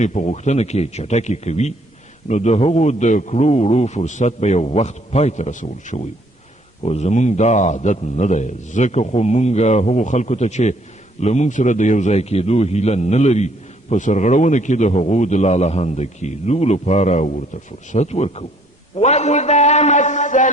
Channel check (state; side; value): normal; both; correlation 0.63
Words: په غوښتنه کې چټکې کوي نو د هغو د کړو وړو فرصت به یو وخت پای ته رسول شوی خو زمونږ دا عادت نه دی ځکه خو مونږ هغو خلکو ته چې له مونږ سره د یو ځای کېدو هیله نه لري په سرغړونه کې د هغو د لالهانده کېدو لپاره ورته فرصت ورکوو وإذا مس